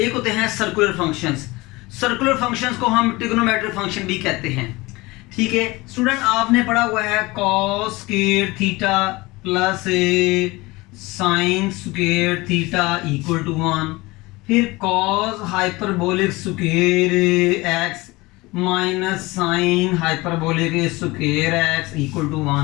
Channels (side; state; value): right; quieter; 22.1 dB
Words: होते हैं सर्कुलर फंक्शंस। सर्कुलर फंक्शंस को हम ट्रिग्नोमेट्रिक फंक्शन भी कहते हैं, ठीक है। स्टूडेंट आपने पढ़ा हुआ है cos square theta plus sine square theta equal to 1, फिर cos hyperbolic square x minus sine hyperbolic square x equal to